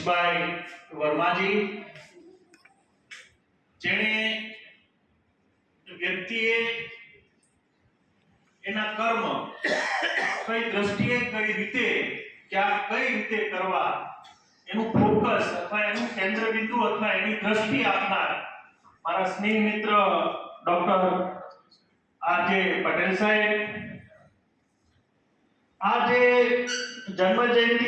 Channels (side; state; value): both; identical; correlation 1.00